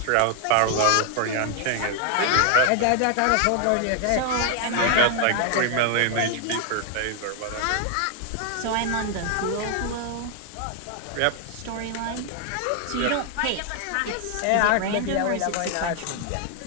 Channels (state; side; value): different; both; correlation 0.00